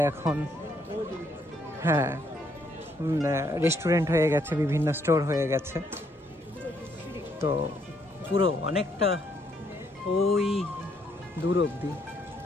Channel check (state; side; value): normal; both; correlation 0.71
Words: এখন রেস্টুরেন্ট হয়ে গেছে, বিভিন্ন স্টোর হয়ে গেছে। তো পুরো অনেকটা ওই দূর অবধি